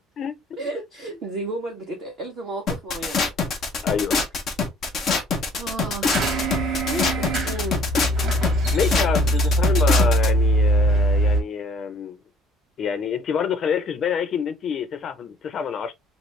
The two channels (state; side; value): normal; both; correlation 0.57